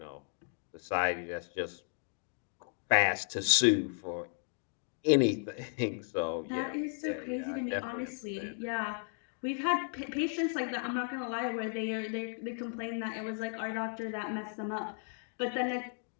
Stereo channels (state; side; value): silent; right; 55 dB below the other